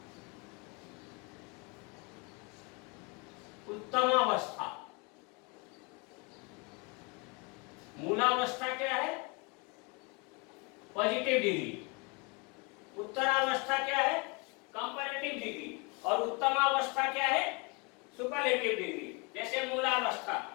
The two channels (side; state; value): right; quieter; 29.7 dB